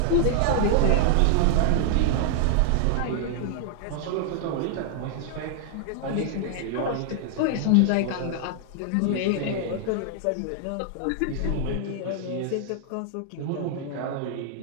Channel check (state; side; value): different; both; correlation 0.00